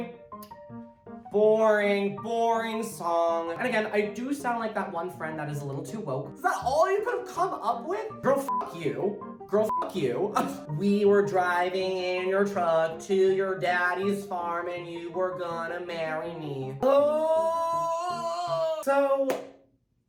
song. And again, I do sound like that one friend that is a little too woke. Is that all you could have come up with? Girl, fuck you. Girl, fuck you. We were driving in your truck to your daddy's farm and you were gonna marry me. Oh! So,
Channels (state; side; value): identical; both; correlation 1.00